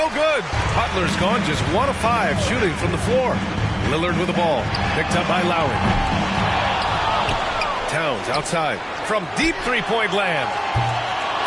good. Butler's gone just 1 of 5 shooting from the floor. Lillard with the ball. Picked up by Lowry. Towns outside from deep three-point land.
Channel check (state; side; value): identical; both; correlation 1.00